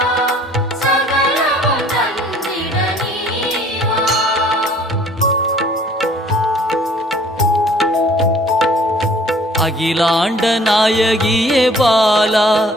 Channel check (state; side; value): normal; both; correlation 0.55